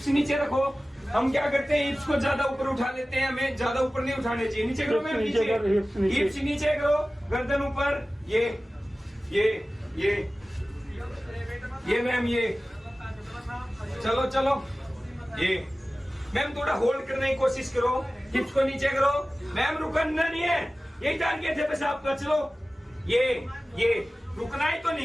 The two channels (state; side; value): normal; both; correlation 0.96